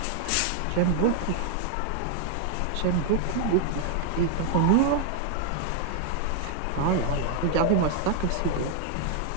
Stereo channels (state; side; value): different; both; correlation 0.00